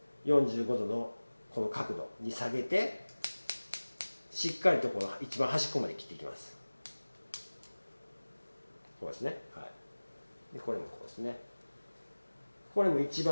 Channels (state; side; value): inverted; both; correlation -1.00